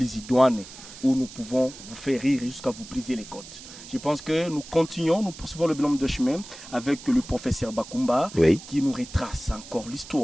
idoine où nous pouvons vous faire rire jusqu'à vous briser les côtes. Je pense que nous continuons, nous poursuivons le bonhomme de chemin avec le professeur Bakumba, oui, qui nous retrace encore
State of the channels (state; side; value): noise; right; hiss, 15 dB below the sound